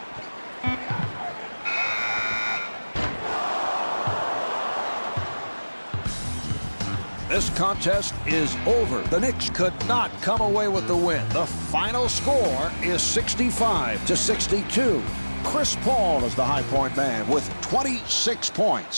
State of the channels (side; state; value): both; inverted; correlation -1.00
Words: This contest is over. The Knicks could not come away with the win. The final score is 65-62. Chris Paul is the high point man with 26